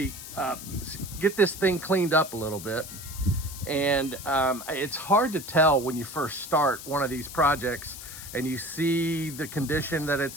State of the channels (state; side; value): noise; left; hiss, 12 dB below the sound